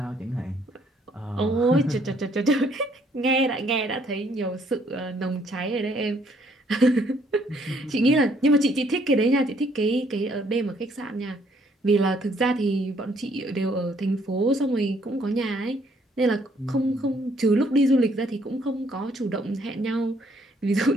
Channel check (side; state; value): both; normal; correlation 0.66